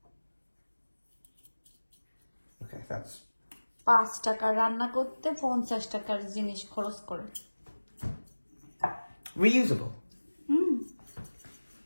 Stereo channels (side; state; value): both; inverted; correlation -1.00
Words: Okay, that's 5 টাকা রান্না করতে 50 টাকার জিনিস খরচ করে। reusable.